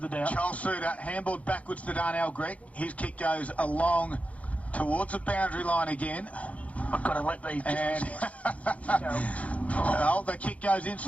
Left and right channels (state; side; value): late; right; 0.066 ms